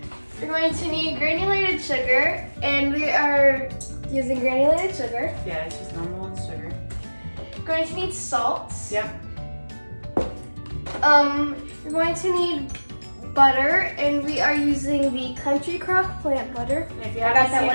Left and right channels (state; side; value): inverted; both; correlation -1.00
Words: We're going to need granulated sugar, and we are using granulated sugar. Yeah, it's just normal sugar. We're going to need salt. Yep. You're going to need butter, and we are using the Country Crock plant butter. And if you haven't seen